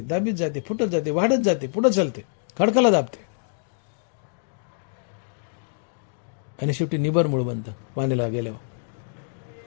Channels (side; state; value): right; silent; digital silence